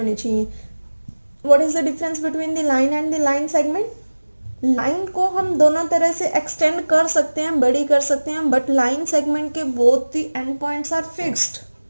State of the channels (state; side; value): inverted; both; correlation -1.00